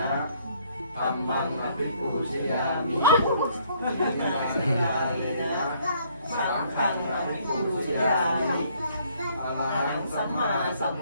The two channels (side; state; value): both; inverted; correlation -0.65